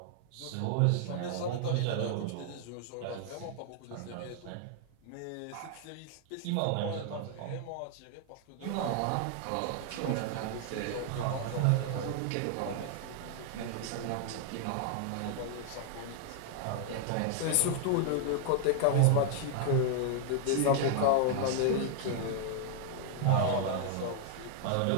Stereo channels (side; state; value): both; different; correlation -0.01